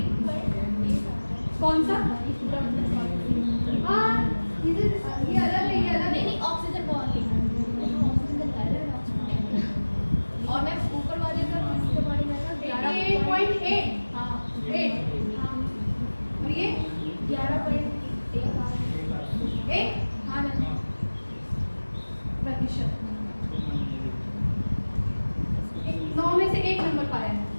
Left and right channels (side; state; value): both; inverted; correlation -1.00